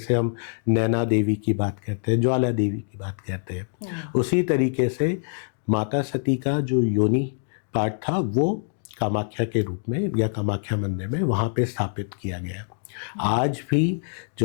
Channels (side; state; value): right; silent; digital silence